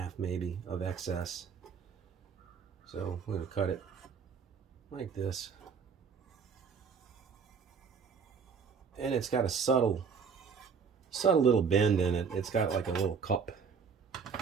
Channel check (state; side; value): quieter; left; 6.1 dB